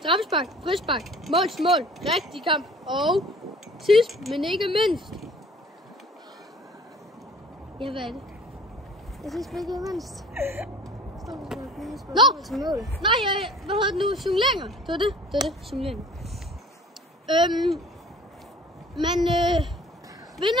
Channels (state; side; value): normal; both; correlation 0.48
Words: frispark, mål til mål, rigtig kamp og sidst, men ikke mindst. Ja, hvad er det? Jeg synes ikke mindst. Nå! Nej, hvad hedder det nu? Simuleringer. Det var det. Simuleringer. Men